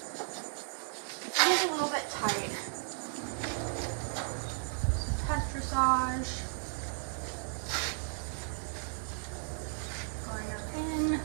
It is a little bit tight. Some test dressage. Going up in.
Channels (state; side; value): silent; left; digital silence